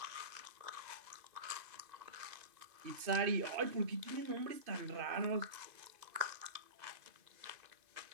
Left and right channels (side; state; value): left; late; 2.5 ms